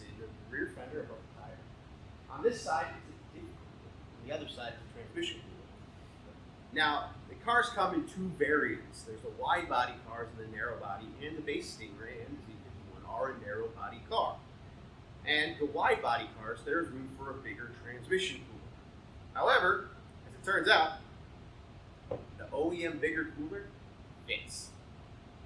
in the rear fender above the tire. On this side, it's a different cooler. On the other side, it's a transmission cooler. Now, the cars come in two variants. There's the wide body cars and the narrow body, and the base Stingray and the Z51 are a narrow body car. And the wide body cars, there's room for a bigger transmission cooler. However, as it turns out, the OEM bigger cooler fits.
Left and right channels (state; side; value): identical; both; correlation 1.00